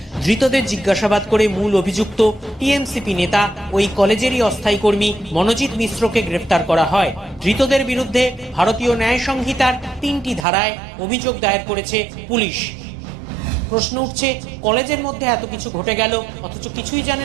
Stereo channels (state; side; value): drops out; left; at 10.5 s